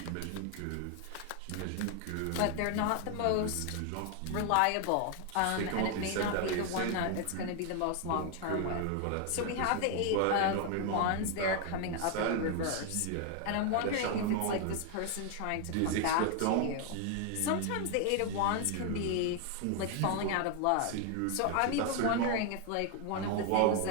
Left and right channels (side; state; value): both; different; correlation 0.01